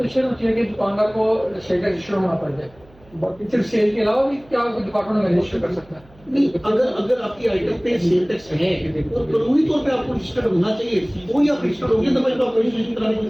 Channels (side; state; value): right; noise; hum, 27 dB below the sound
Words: ہوتی ہے کہ دکاندار کو سیل ٹیکس رجسٹر ہونا پڑ جائے؟ صرف سیل کے علاوہ بھی کیا ڈپارٹمنٹ میں رجسٹر کر سکتا ہے؟ نہیں، اگر آپ کی آئٹم پہ سیل ٹیکس ہے اور قانونی طور پہ آپ کو رجسٹرڈ ہونا چاہیے وہی آپ رجسٹرڈ ہوں گے تو آپ کو رجسٹریشن کرانے